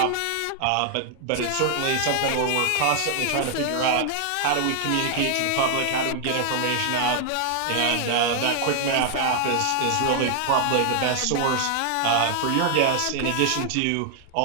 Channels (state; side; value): different; both; correlation 0.00